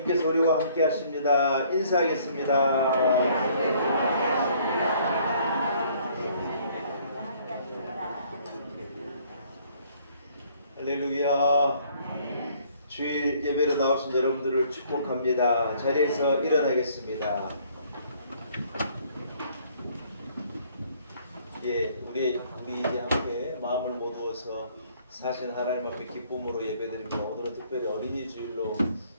우리와 함께 하십니다. 인사하겠습니다. 할렐루야. 주일 예배로 나오신 여러분들을 축복합니다. 자리에서 일어나겠습니다. 우리 이제 함께 마음을 모두어서 사신 하나님 앞에 기쁨으로 예배드립니다. 오늘은 특별히 어린이 주일로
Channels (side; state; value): both; inverted; correlation -0.61